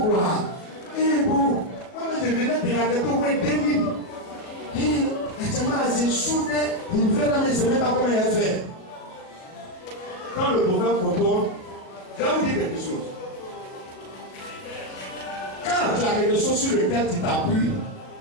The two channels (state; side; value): late; right; 37 ms